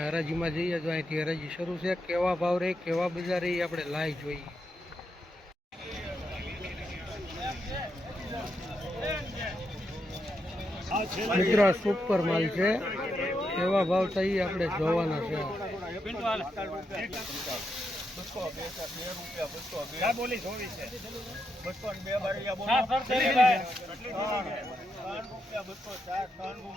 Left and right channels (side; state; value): both; normal; correlation 0.83